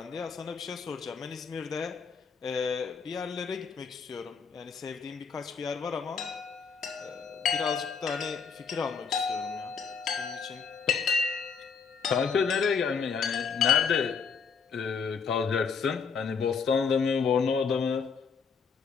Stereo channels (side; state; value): right; quieter; 5.9 dB